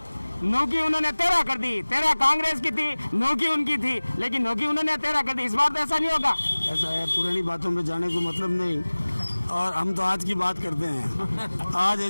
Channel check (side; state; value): both; inverted; correlation -1.00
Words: नौकी उन्होंने 13 कर दी। 13 कांग्रेस की थी, नौकी उनकी थी, लेकिन नौकी उन्होंने 13 कर दी। इस बार तो ऐसा नहीं होगा। ऐसा है, पुरानी बातों में जाने को मतलब नहीं, और हम तो आज की बात करते हैं। आज